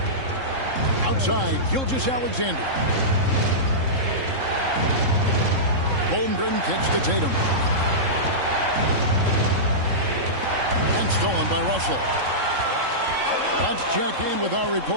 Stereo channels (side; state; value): left; late; 3.7 ms